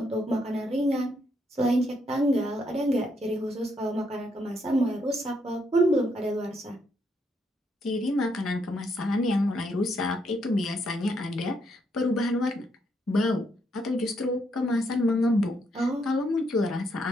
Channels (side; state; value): both; normal; correlation 0.76